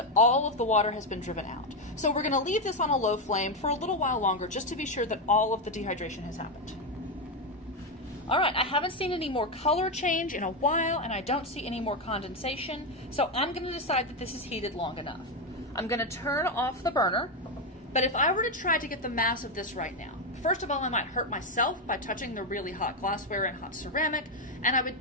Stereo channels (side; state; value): both; normal; correlation 0.07